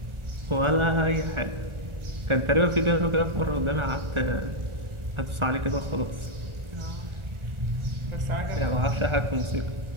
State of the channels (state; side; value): late; left; 1.4 ms